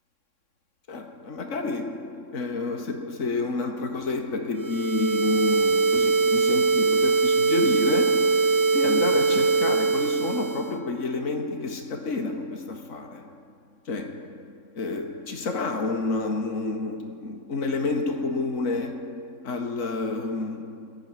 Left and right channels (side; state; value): right; late; 3.6 ms